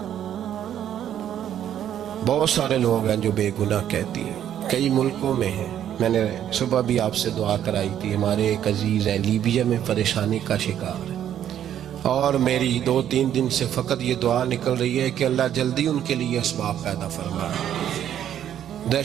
بہت سارے لوگ ہیں جو بے گناہ کہتی ہیں، کئی ملکوں میں ہیں۔ میں نے صبح بھی آپ سے دعا کرائی تھی، ہمارے ایک عزیز ہیں لیبیا میں پریشانی کا شکار ہے، اور میری 2-3 دن سے فقط یہ دعا نکل رہی ہے کہ اللہ جلدی ان کے لیے اسباب پیدا فرمائے۔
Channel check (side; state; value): left; quieter; 10.4 dB